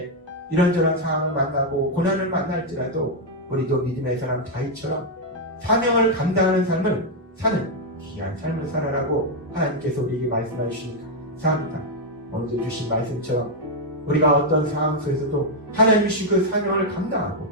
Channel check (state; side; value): normal; both; correlation 0.00